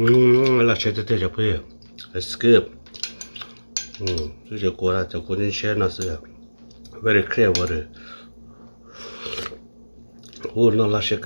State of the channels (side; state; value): both; inverted; correlation -1.00